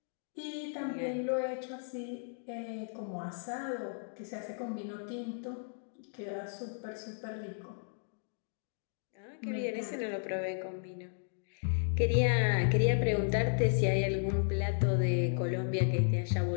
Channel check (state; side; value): silent; right; digital silence